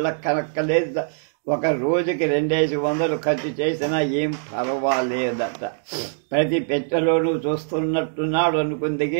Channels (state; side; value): silent; left; digital silence